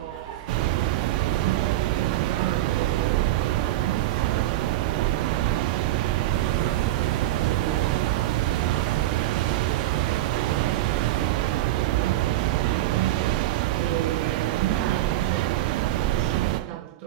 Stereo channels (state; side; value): quieter; left; 14.9 dB